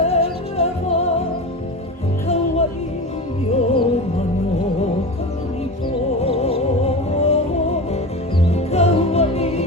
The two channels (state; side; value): normal; both; correlation 0.27